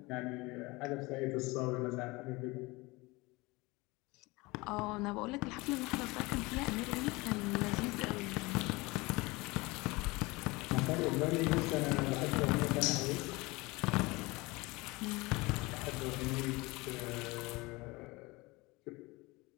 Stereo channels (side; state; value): right; quieter; 23.5 dB